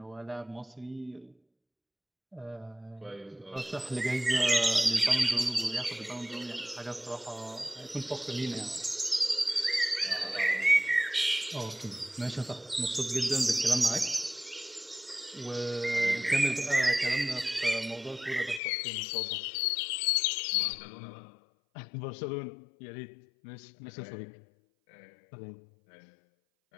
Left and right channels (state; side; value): drops out; right; at 18.6 s